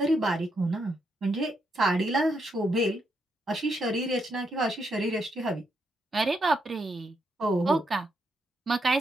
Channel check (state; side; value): normal; both; correlation 0.79